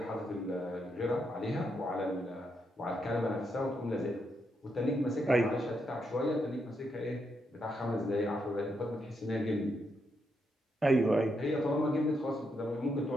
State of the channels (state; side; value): normal; both; correlation 0.80